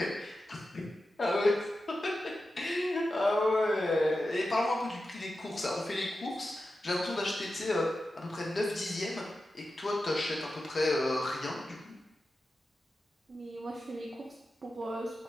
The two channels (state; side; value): normal; both; correlation 0.92